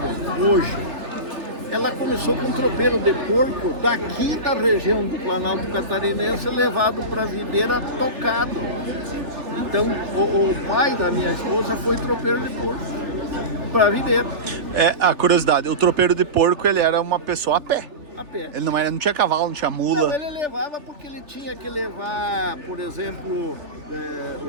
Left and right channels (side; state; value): left; late; 3.4 ms